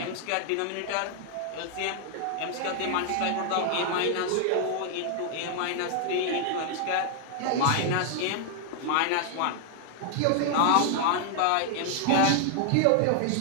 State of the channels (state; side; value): different; both; correlation 0.00